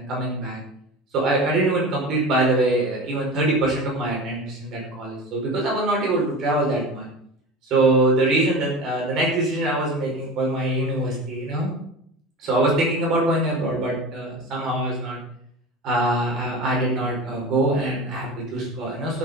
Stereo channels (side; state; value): both; normal; correlation 0.31